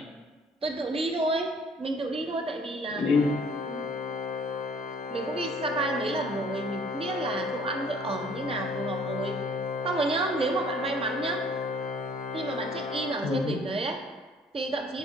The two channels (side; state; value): both; normal; correlation 0.56